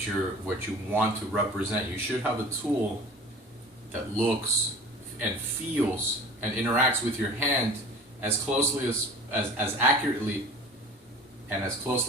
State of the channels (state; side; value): normal; both; correlation 0.42